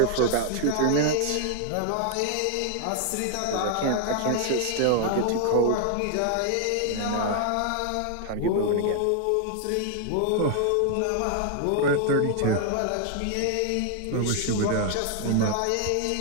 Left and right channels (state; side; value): different; both; correlation 0.00